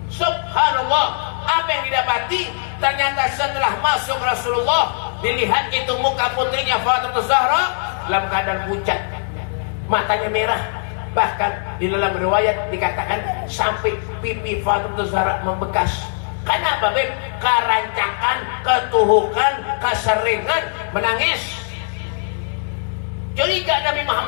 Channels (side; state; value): right; silent; digital silence